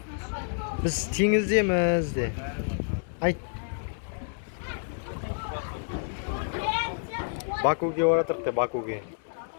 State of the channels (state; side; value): silent; right; 59 dB below the other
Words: Біз теңіздеміз де. Айт. Бакуге оратырық де, Бакуге.